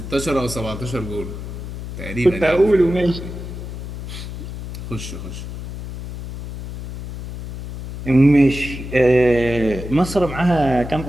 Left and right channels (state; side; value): noise; left; hum, 9 dB below the sound